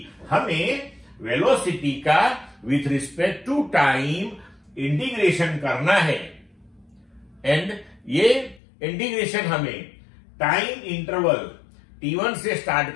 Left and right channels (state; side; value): drops out; right; at 8.6 s